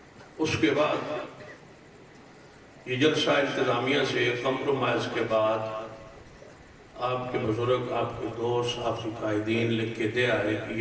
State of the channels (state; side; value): identical; both; correlation 1.00